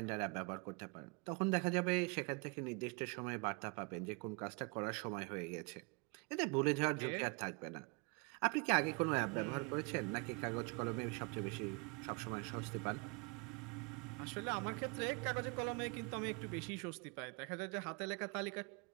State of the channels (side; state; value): left; quieter; 32.5 dB